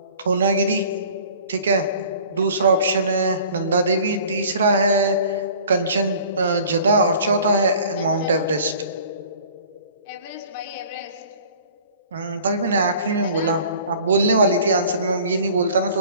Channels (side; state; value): both; inverted; correlation -0.48